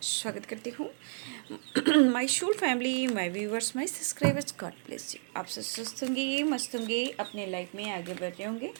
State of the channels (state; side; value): silent; left; digital silence